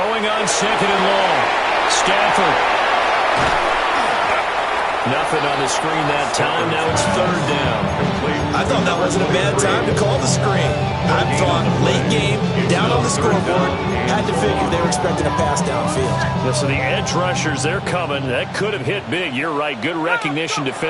on 2nd and long. Stafford. Nothing on the screen that time. Now it's 3rd down. I thought that wasn't a bad time to call the screen. I thought late game, down on the scoreboard, had to figure they were expecting a pass downfield. Yeah, so the edge rushers, they're coming. That could have hit big. You're right. Good recognition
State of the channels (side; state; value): both; identical; correlation 1.00